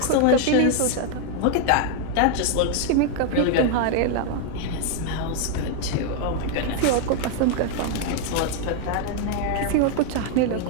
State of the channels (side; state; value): both; different; correlation 0.00